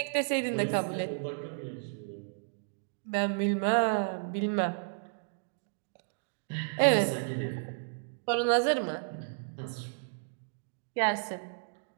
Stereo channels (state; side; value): silent; left; digital silence